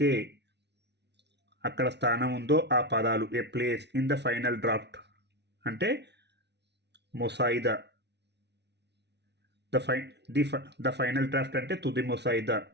అక్కడ స్థానం ఉందో ఆ పదాలు. A place in the final draft అంటే ముసాయిదా. ద ఫైనల్ డ్రాఫ్ట్ అంటే తుది ముసాయిదా.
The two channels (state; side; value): late; left; 0.50 ms